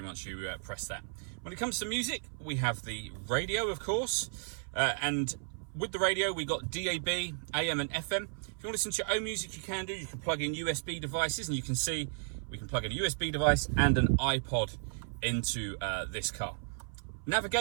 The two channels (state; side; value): silent; left; 55 dB below the other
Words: once you press that. When it comes to music, we have the radio, of course, and with the radio, we got DAB, AM and FM. If you want to listen to your own music, you can do. You can plug in USB devices, and you can see we can plug in a USB device and an iPod into this car.